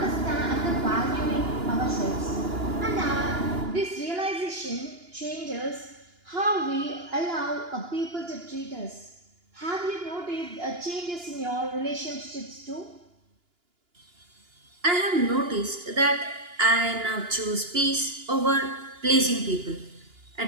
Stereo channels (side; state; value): left; late; 2.9 ms